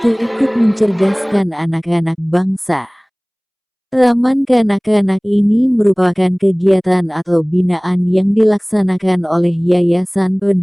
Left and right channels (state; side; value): identical; both; correlation 1.00